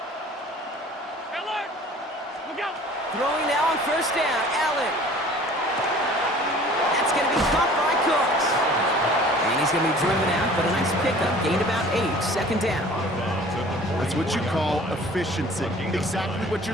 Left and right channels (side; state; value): both; normal; correlation 0.48